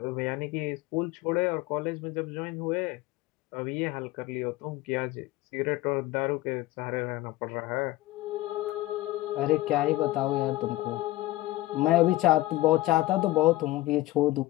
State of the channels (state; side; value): quieter; right; 17.8 dB